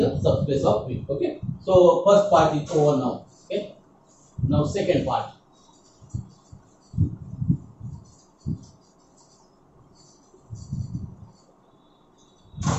a subspace of V. Okay. So first part is over now. Okay. Now second part.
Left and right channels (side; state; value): both; identical; correlation 1.00